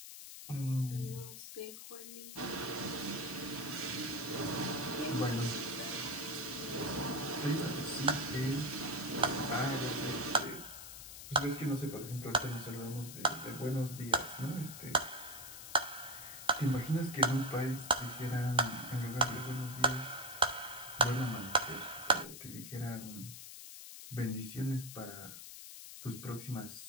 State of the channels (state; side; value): noise; left; hiss, 11 dB below the sound